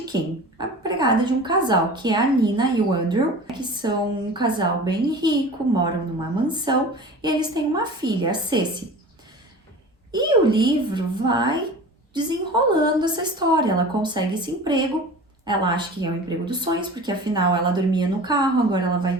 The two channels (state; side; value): normal; both; correlation 0.37